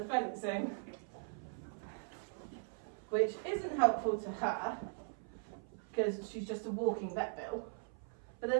fencing, which isn't helpful to her because she's just a walking vet bill, but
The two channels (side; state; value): left; silent; 51 dB below the other